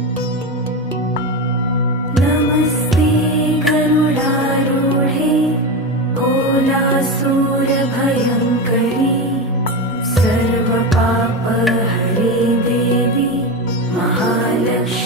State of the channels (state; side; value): normal; both; correlation 0.18